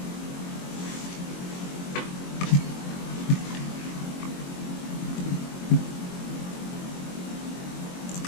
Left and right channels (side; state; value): right; late; 22 ms